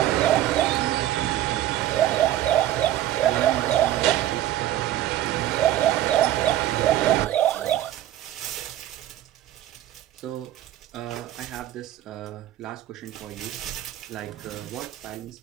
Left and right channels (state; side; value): quieter; left; 13.1 dB